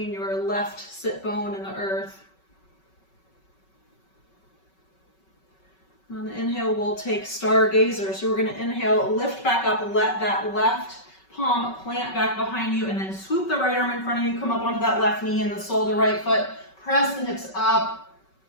your left sit bone and the earth. On the inhale, we'll take stargazer. So we're going to inhale, lift back up, let that left palm plant back behind you, and then swoop the right arm in front of you, come up onto that left knee and the sole of the right foot. Press the hips up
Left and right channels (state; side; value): late; right; 5.3 ms